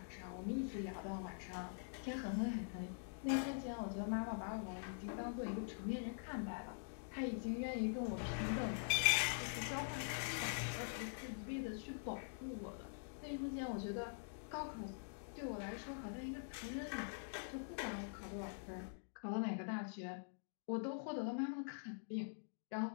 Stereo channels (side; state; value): right; silent; digital silence